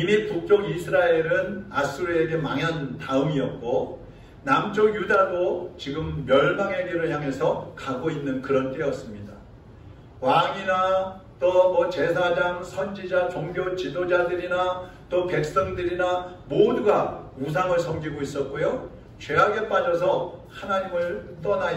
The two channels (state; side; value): identical; both; correlation 1.00